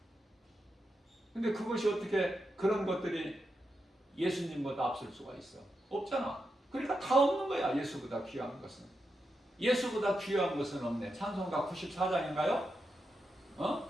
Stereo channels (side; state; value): both; normal; correlation 0.86